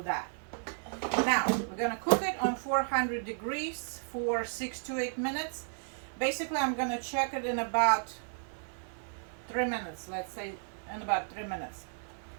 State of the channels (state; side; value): silent; left; 55 dB below the other